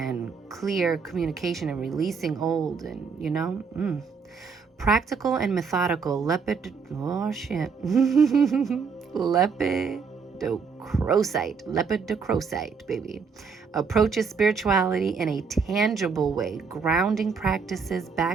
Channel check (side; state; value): left; quieter; 5.5 dB